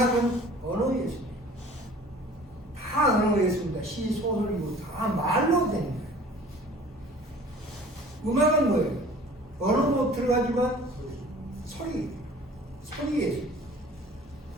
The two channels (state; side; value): normal; both; correlation 0.47